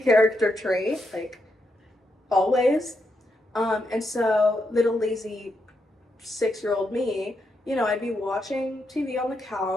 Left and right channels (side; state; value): both; normal; correlation 0.82